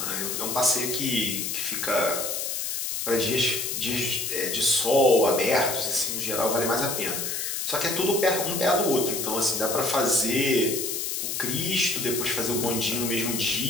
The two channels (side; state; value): left; noise; hiss, 2 dB below the sound